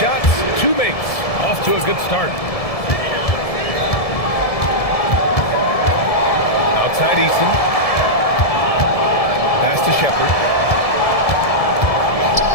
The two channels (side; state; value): right; late; 1.7 ms